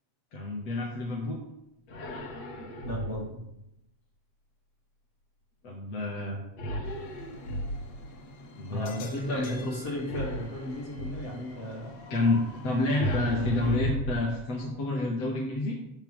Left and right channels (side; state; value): right; late; 7.7 ms